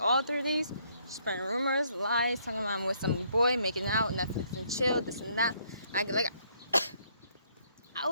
3 days, spreading rumors, lies, talking about I'm with some boy, making out, Netflix and chill, this and that. I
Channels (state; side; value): inverted; both; correlation -0.68